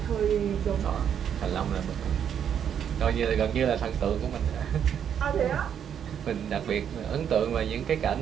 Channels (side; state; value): left; quieter; 8.6 dB